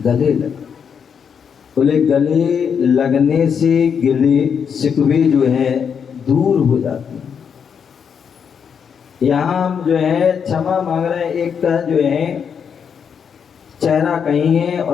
लग। बोले गले लगने से गिले शिकवे जो है दूर हो जाते हैं। यहाँ हम जो है क्षमा मांग रहे हैं, एक का जो है चेहरा कहीं है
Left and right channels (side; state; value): right; quieter; 7.1 dB